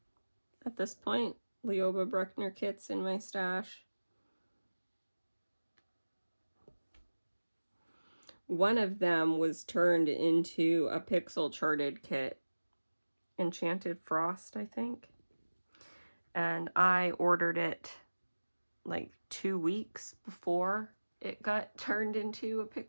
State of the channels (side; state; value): both; inverted; correlation -1.00